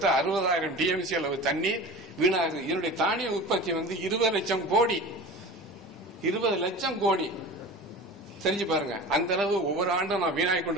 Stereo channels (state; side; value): normal; both; correlation 0.35